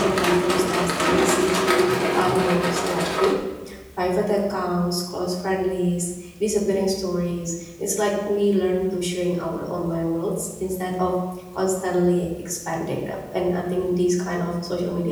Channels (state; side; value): identical; both; correlation 1.00